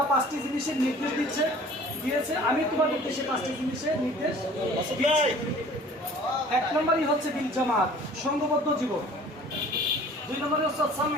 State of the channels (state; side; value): normal; both; correlation 0.48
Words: 5টি জিনিসের নির্দেশ দিয়েছে, আমি তোমাদেরকে সেই 5টি জিনিসের নির্দেশ দিয়েছি। 1 নম্বরই হচ্ছে বিল জামাত, সংঘবদ্ধ জীবন। 2 নম্বরে হচ্ছে